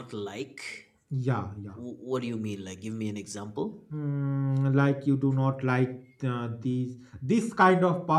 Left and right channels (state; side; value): identical; both; correlation 1.00